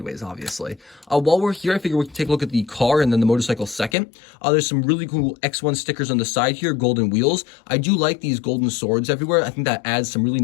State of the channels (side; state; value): right; drops out; at 4.0 s